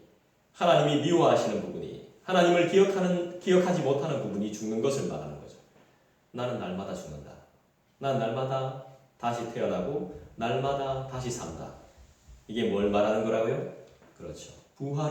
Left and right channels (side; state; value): both; identical; correlation 1.00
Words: 하나님이 미워하시는 부분이, 하나님을 기억하지 못하는 부분이 죽는 것을 말하는 거죠. 나는 날마다 죽는다. 난 날마다 다시 태어나고 날마다 다시 산다. 이게 뭘 말하는 거라고요? 그렇죠.